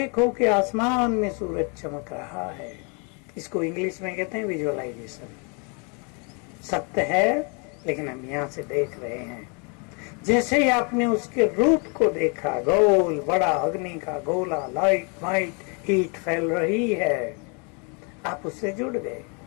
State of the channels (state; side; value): quieter; right; 35.1 dB